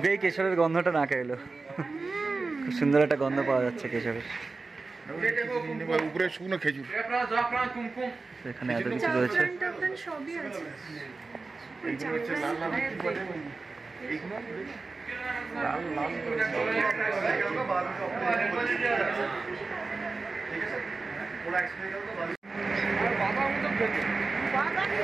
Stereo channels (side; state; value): left; quieter; 3.9 dB